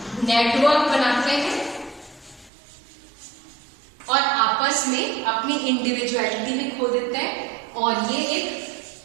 network बनाते हैं और आपस में अपनी इंडिविजुअलिटी में खो देते हैं, और ये एक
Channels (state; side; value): drops out; left; at 2.5 s